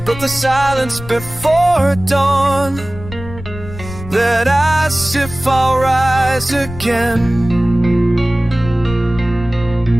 the silence before dawn, that asks if I'll rise again.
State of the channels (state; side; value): noise; left; rumble, 13 dB below the sound